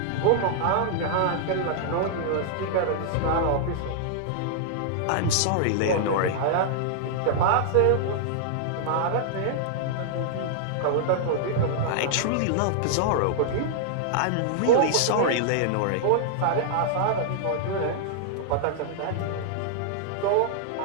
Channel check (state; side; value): different; both; correlation -0.01